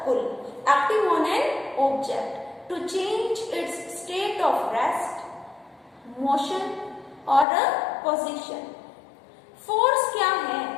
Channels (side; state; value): right; drops out; at 7.5 s